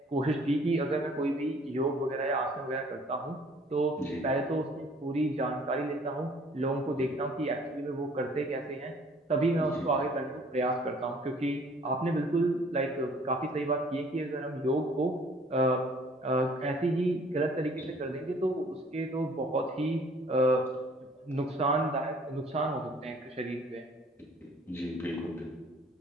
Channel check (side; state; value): both; normal; correlation 0.56